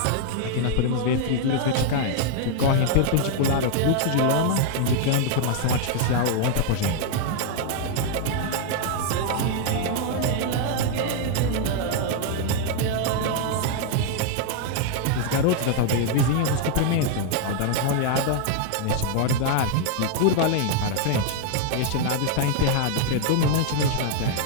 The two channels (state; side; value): different; both; correlation 0.00